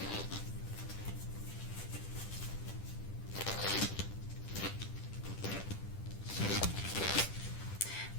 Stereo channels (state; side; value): late; right; 10 ms